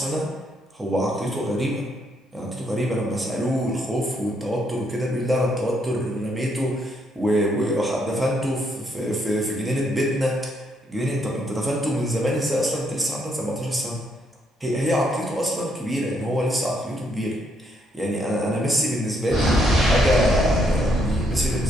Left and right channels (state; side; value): normal; both; correlation 0.74